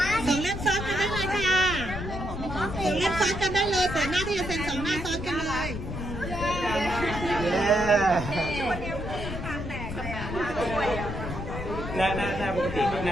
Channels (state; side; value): noise; left; rumble, 6 dB below the sound